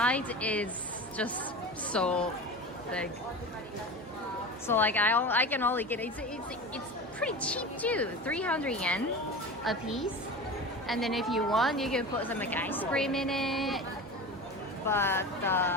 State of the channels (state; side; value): normal; both; correlation 0.30